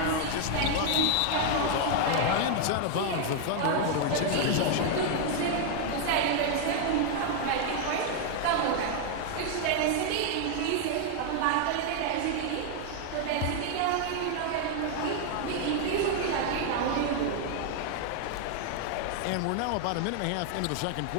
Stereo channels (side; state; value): both; different; correlation 0.00